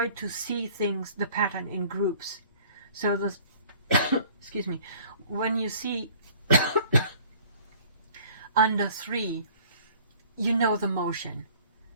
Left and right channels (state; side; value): inverted; both; correlation -0.51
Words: to see things, the pattern in groups. So this, excuse me, when you see under 3, you know the motion,